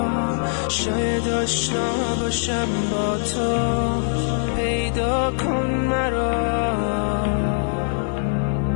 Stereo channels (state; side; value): silent; right; 55 dB below the other